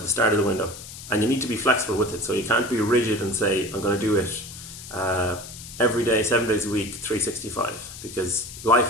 start of the window. And you need to be flexible with it. So you can't be rigid and say, I'm going to do it every day, 7 days a week, 365, because life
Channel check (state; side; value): noise; left; hiss, 13 dB below the sound